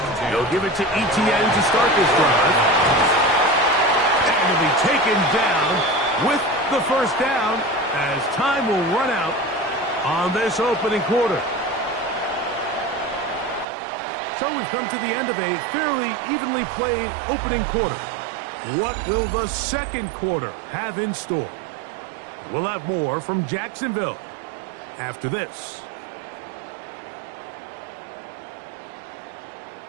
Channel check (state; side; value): drops out; left; at 13.7 s